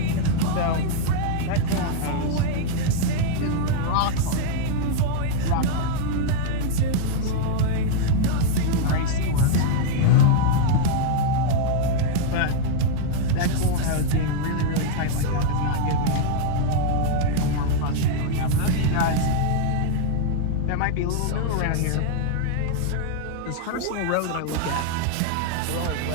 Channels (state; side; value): different; both; correlation -0.01